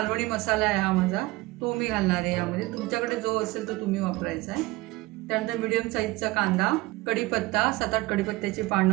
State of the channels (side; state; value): left; quieter; 20.7 dB